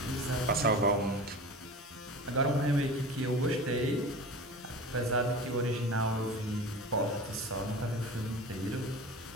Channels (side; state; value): both; normal; correlation 0.34